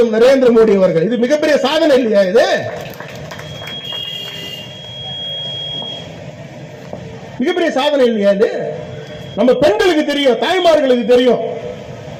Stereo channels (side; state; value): both; identical; correlation 1.00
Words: நரேந்திர மோடி அவர்கள். இது மிகப்பெரிய சாதனை இல்லையா? இது மிகப்பெரிய சாதனை இல்லையா? இது நம்ம பெண்களுக்கு தெரியும், தாய்மார்களுக்கு தெரியும்.